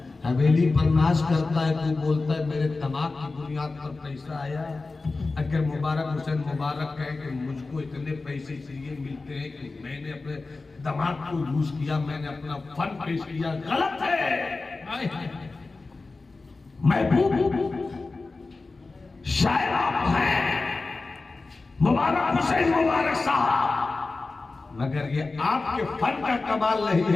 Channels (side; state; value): right; quieter; 3.7 dB